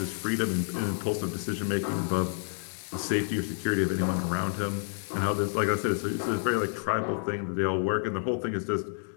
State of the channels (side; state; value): right; silent; 58 dB below the other